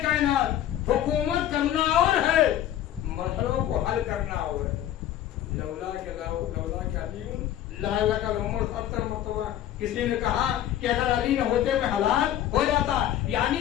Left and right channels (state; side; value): quieter; right; 11.9 dB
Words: کائنات حکومت کرنا اور ہے، مسئلوں کو حل کرنا اور ہے۔ لولا کہ علی لا کا عمر 70 مرتبہ کسی نے کہا کہ اگر علی نہ ہوتے میں ہلاک ہو جاتا،